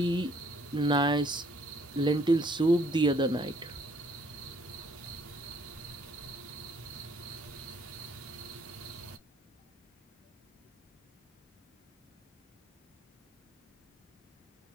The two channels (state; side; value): normal; both; correlation 0.63